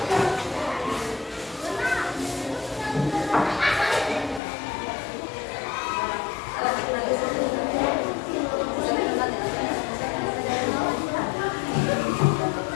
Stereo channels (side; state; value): right; drops out; at 4.4 s